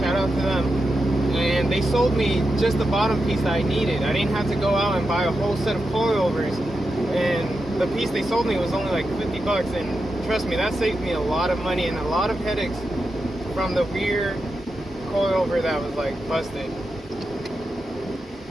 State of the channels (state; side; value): normal; both; correlation 0.88